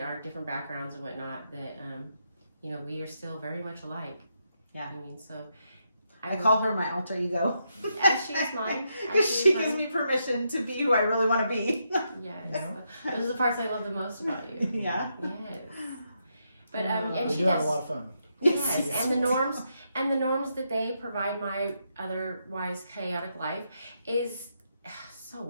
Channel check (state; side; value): inverted; both; correlation -0.81